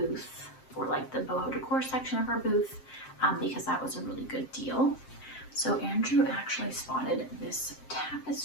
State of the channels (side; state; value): right; late; 7.6 ms